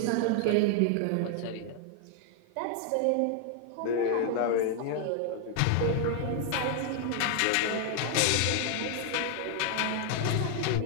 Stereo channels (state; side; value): different; both; correlation 0.00